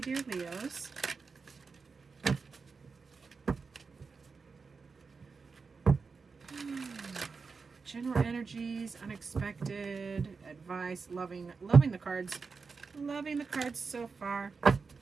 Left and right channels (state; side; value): quieter; left; 4.8 dB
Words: Leos. General energies, unexpected, advice, loving the cards. Loving the cards so far.